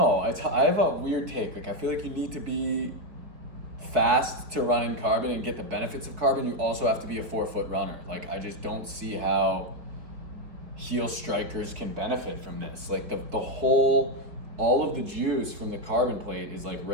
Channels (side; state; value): left; late; 4.6 ms